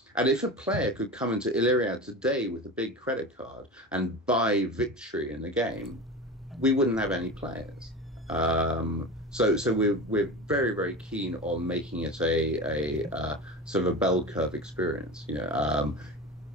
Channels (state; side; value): normal; both; correlation 0.28